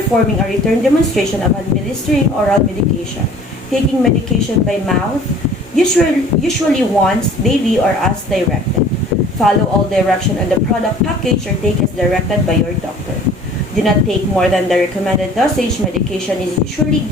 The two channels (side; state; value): both; normal; correlation 0.49